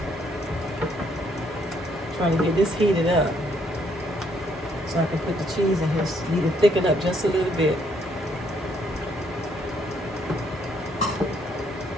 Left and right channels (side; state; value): both; normal; correlation 0.69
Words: Trying to get this heated up so I can put the cheese in here. Need to thicken up just a little bit.